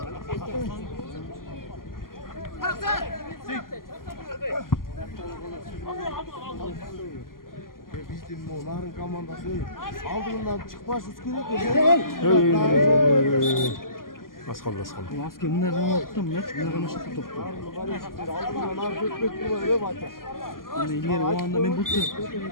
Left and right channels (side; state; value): right; late; 0.91 ms